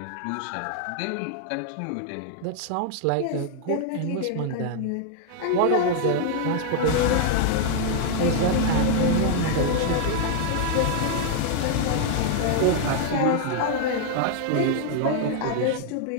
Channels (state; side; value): different; both; correlation 0.00